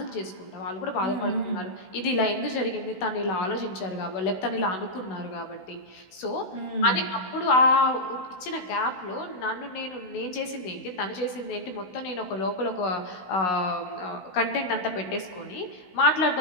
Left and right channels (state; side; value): late; right; 16 ms